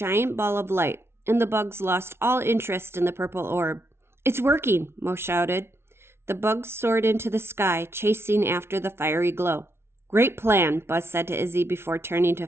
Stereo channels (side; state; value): left; late; 0.12 ms